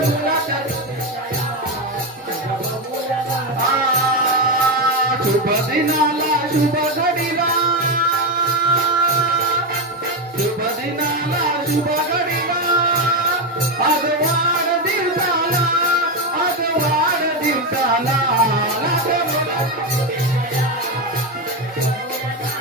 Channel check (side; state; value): both; normal; correlation 0.10